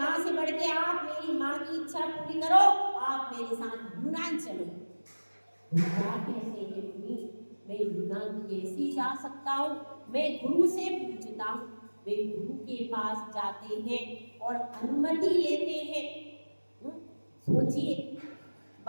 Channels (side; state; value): both; inverted; correlation -1.00